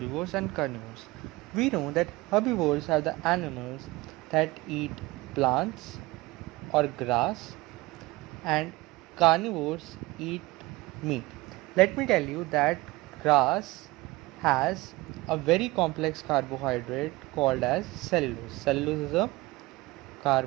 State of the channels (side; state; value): left; quieter; 21.0 dB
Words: and carnivores. We know that herbivores are the animals that eat plants or grass and carnivores eat meat. Let me tell you that grass has a very complex carbohydrate called as cellulose. Cellulose is a